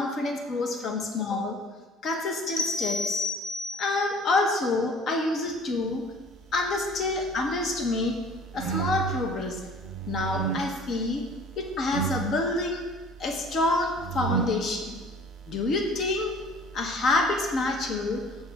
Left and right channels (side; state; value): both; normal; correlation 0.49